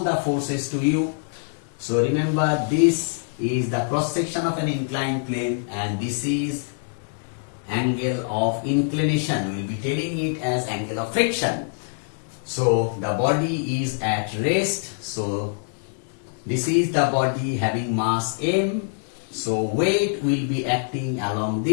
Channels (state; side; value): silent; right; 62 dB below the other